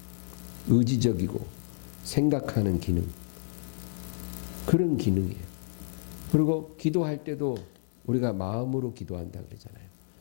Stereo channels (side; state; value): right; silent; digital silence